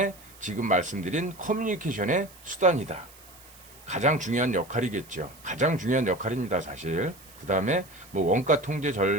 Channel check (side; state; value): right; noise; hiss, 22 dB below the sound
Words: 지금 말씀드린 커뮤니케이션의 수단이다. 가장 중요한 역할이겠죠. 가장 중요한 역할입니다, 사실. 그 다음에 뭐 원가 통제